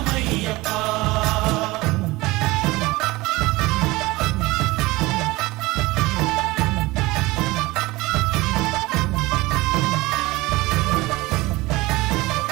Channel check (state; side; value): quieter; left; 20.9 dB